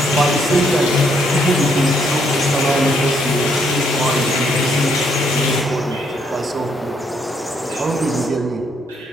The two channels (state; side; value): normal; both; correlation 0.71